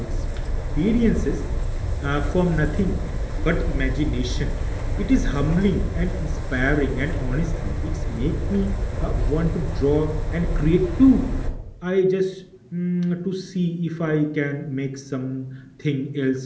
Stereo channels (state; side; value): identical; both; correlation 1.00